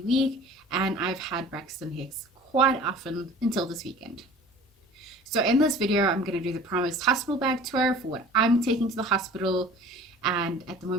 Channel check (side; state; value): both; normal; correlation 0.44